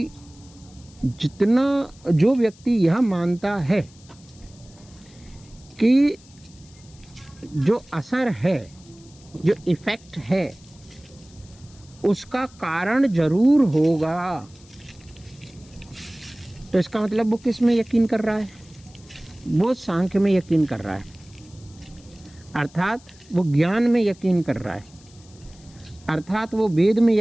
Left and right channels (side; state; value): left; noise; hiss, 26 dB below the sound